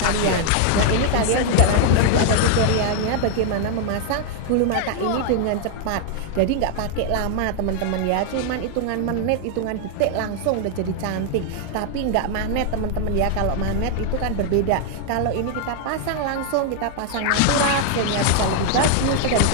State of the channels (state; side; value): different; both; correlation 0.00